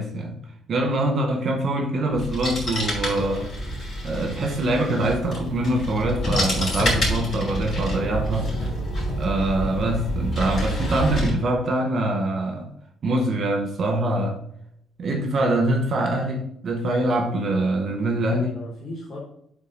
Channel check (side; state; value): both; normal; correlation 0.69